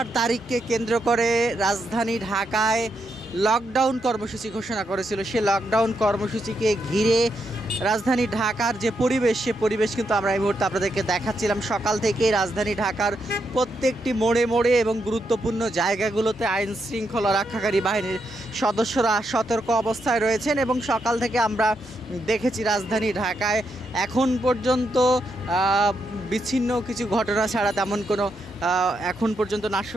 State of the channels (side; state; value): both; normal; correlation 0.81